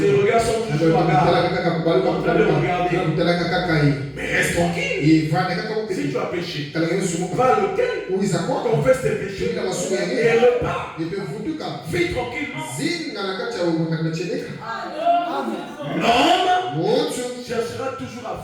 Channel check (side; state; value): both; identical; correlation 1.00